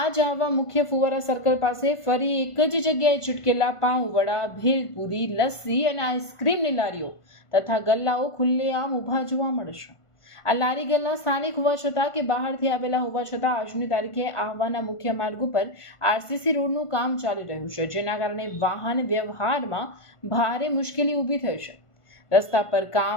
આહવા મુખ્ય ફુવારા સર્કલ પાસે ફરી એક જ જગ્યાએ છૂટકેલા પાઉં વડા, ભેલપુરી, લસ્સી અને આઈસ્ક્રીમની લારીઓ તથા ગલ્લાઓ ખુલ્લેઆમ ઊભા જોવા મળે છે. આ લારી ગલ્લા સ્થાનિક હોવા છતાં કે બહારથી આવેલા હોવા છતાં આજની તારીખે આહવાના મુખ્ય માર્ગ ઉપર આરસીસી રોડનું કામ ચાલી રહ્યું છે, જેના કારણે વાહન વ્યવહારમાં ભારે મુશ્કેલી ઊભી થઈ છે. રસ્તા પર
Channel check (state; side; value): late; right; 1.5 ms